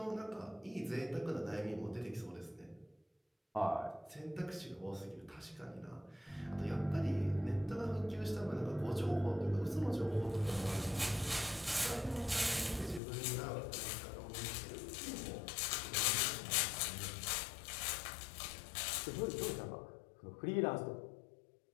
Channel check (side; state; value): right; drops out; at 13.0 s